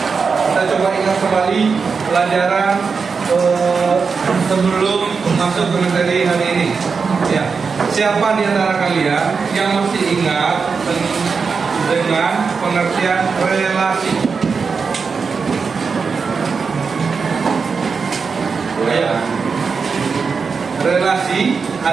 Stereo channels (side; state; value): left; quieter; 5.3 dB